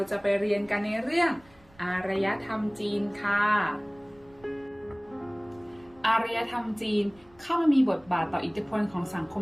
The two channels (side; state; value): right; noise; rumble, 28 dB below the sound